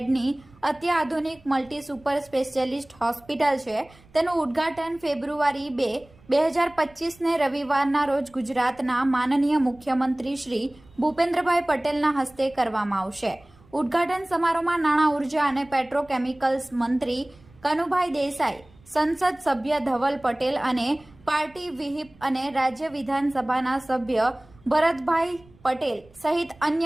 અત્યાધુનિક મલ્ટી સુપર સ્પેશિયાલિસ્ટ હોસ્પિટલ છે, તેનું ઉદ્ઘાટન ફેબ્રુઆરી 2, 2025ને રવિવારના રોજ ગુજરાતના માનનીય મુખ્યમંત્રી શ્રી ભૂપેન્દ્રભાઈ પટેલના હસ્તે કરવામાં આવશે। ઉદ્ઘાટન સમારોહમાં નાણાં, ઉર્જા અને પેટ્રોકેમિકલ્સ મંત્રી કનુભાઈ દેસાઈ, સંસદ સભ્ય ધવલ પટેલ અને પાર્ટી વ્હીપ અને રાજ્ય વિધાનસભાના સભ્ય ભરતભાઈ પટેલ સહિત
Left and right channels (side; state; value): right; noise; rumble, 27 dB below the sound